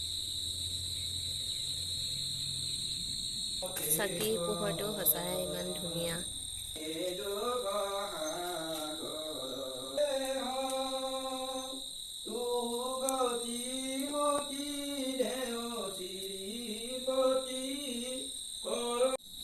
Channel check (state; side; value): identical; both; correlation 1.00